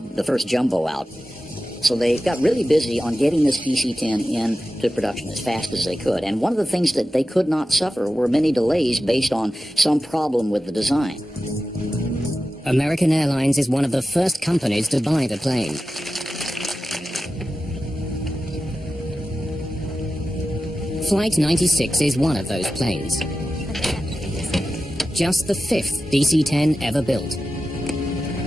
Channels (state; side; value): normal; both; correlation 0.93